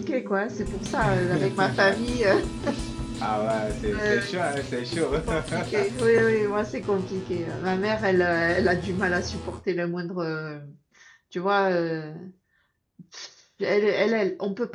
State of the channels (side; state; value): both; identical; correlation 1.00